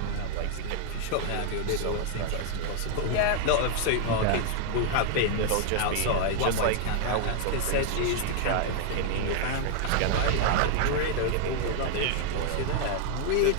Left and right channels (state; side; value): different; both; correlation 0.00